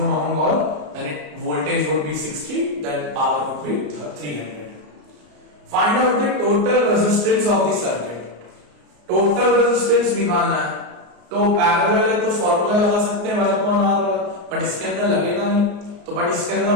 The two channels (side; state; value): left; late; 34 ms